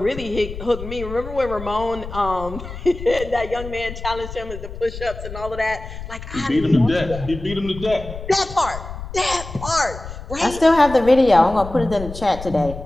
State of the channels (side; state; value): left; noise; rumble, 11 dB below the sound